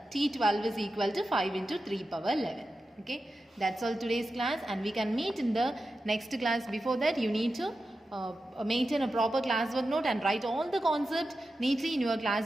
T12 is equal to 5 into 3 power 11. Okay, that's all today's class, and we can meet in the next class. Before that, you need to maintain a proper classwork note and write all the concepts neatly in your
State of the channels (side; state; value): both; normal; correlation 0.91